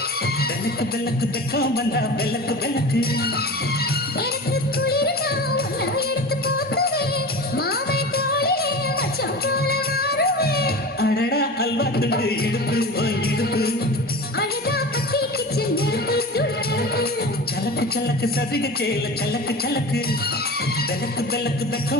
விளக்கு விளக்கு வெக்கம் வந்தா விளக்கு விளக்கு எனக்கு குளிர்னா உன்னை எடுத்து போத்துவேன் மாமை தோளிலே மச்சம் போல மாறுவேன் அடடா அல்வா துண்டு இடுப்பு போன் இடுப்பு அழகா பத்தி கிச்சு நெருப்பு துள்ளுப்பு சலக்கு சலக்கு சதிக சேல சலக்கு சலக்கு விளக்கு விளக்கு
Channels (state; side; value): normal; both; correlation 0.33